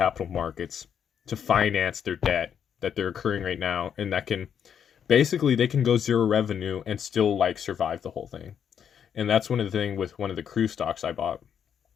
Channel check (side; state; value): right; quieter; 8.2 dB